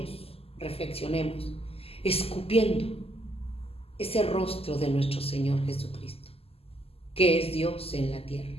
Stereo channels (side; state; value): right; late; 0.29 ms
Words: reflexionemos, escupiendo ese rostro de nuestro Señor Jesucristo, que es Dios en la tierra,